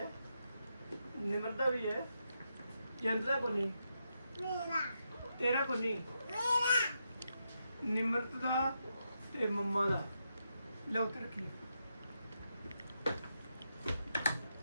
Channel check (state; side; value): inverted; both; correlation -0.83